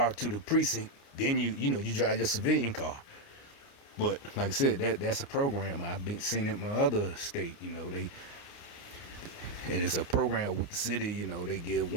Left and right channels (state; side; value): late; right; 29 ms